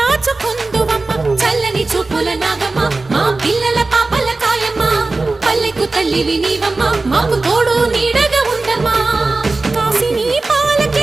చల్లని చూపుల నాగమ్మ మా పిల్లల పాపల కాయమ్మ పల్లెకు తల్లివి నీవమ్మ మాకు తోడు నీడగా ఉండమ్మా కాసిని పాలకి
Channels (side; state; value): left; quieter; 3.4 dB